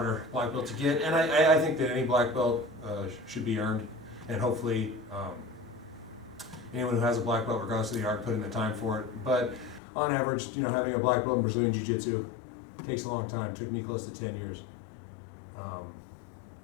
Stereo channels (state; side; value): drops out; right; at 9.8 s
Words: black belt to get. And I think that any black belt should be earned, and hopefully anyone who has a black belt, regardless of the art, put in the time for it. But on average, you know, having a black belt in Brazilian Jiu-Jitsu takes a long time. It took me close to 10 years. What